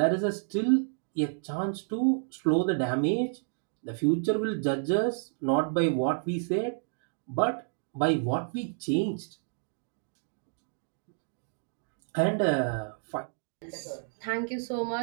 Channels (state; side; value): silent; left; digital silence